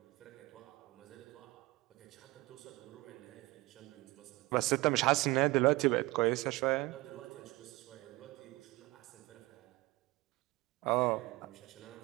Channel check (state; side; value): quieter; left; 21.6 dB